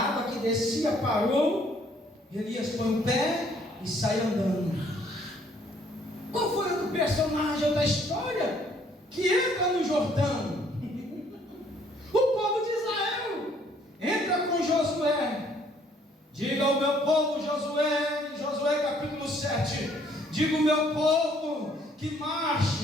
que descia parou, Elias põe o pé e sai andando. Qual foi o personagem da história que entra no Jordão? O povo de Israel. Diga ao meu povo, Josué, em Josué capítulo 7, diga ao meu povo que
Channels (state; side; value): normal; both; correlation 0.63